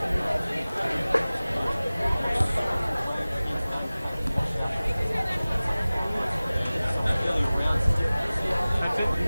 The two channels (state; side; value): inverted; both; correlation -0.98